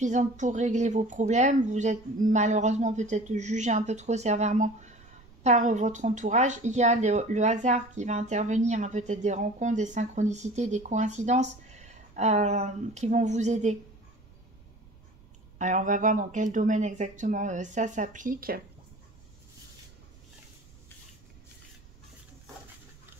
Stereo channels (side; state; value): right; noise; rumble, 25 dB below the sound